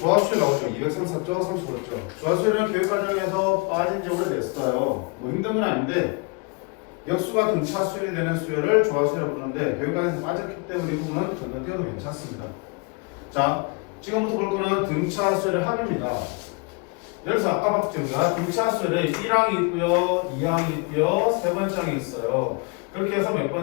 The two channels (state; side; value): quieter; right; 30.3 dB